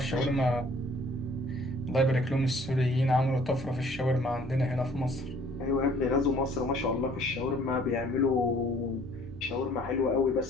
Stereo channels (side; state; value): both; normal; correlation 0.56